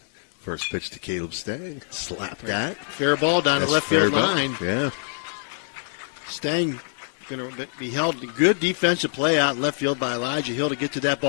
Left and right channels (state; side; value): silent; right; digital silence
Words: First pitch to Caleb Stang. Slap that. Fair ball down the left field line. Yeah. Stang going to be held. Good defensive play out in left field by Elijah Hill to get to that